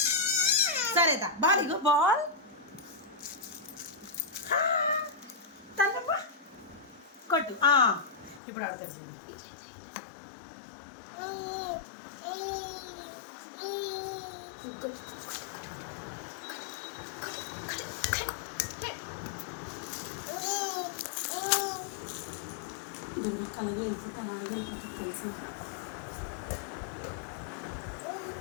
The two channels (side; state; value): right; drops out; at 8.4 s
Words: సరేదా బాల్ ఇగో బాల్ తన్నమ్మా కొట్టు ఇప్పుడు ఆడతాడు చూడు దుర్గక్కలవి వెళ్ళిపోతాను అవి వెళ్ళిపోతుంది తెలుసా